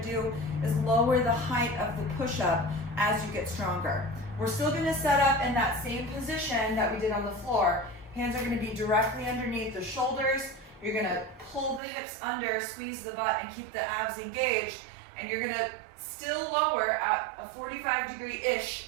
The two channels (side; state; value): left; drops out; at 11.8 s